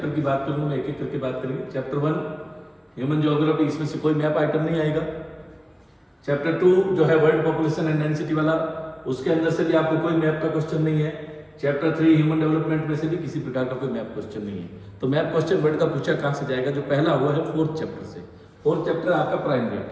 की बात करूंगा मैं, एक एक करके बात करेंगे। चैप्टर 1 ह्यूमन ज्योग्राफी, इसमें से कोई मैप आइटम नहीं आएगा। चैप्टर 2 जो है वर्ल्ड पॉपुलेशन एंड डेंसिटी वाला, उसके अंदर से भी आपको कोई मैप का क्वेश्चन नहीं है। चैप्टर 3 ह्यूमन डेवलपमेंट में से भी किसी प्रकार का कोई मैप क्वेश्चन नहीं है। तो मैप क्वेश्चन वर्ल्ड का पूछा कहाँ से जाएगा? जो पहला हुआ है 4th चैप्टर से। 4th चैप्टर आपका प्राइमरी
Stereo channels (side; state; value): both; identical; correlation 1.00